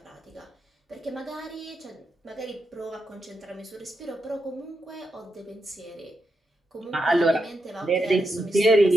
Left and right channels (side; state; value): both; normal; correlation 0.85